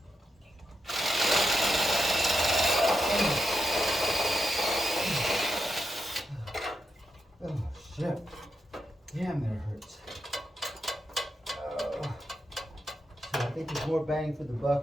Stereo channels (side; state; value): both; normal; correlation 0.85